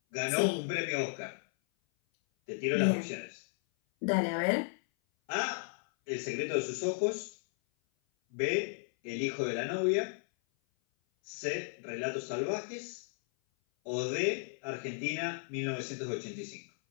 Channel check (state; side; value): silent; right; 55 dB below the other